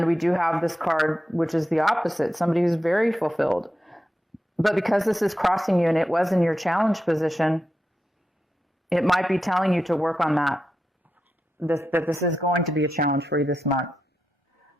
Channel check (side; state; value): both; normal; correlation 0.88